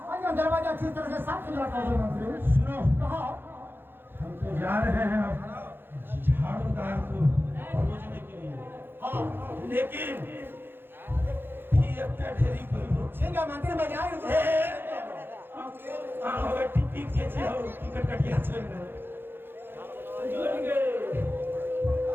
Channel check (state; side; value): late; left; 0.10 ms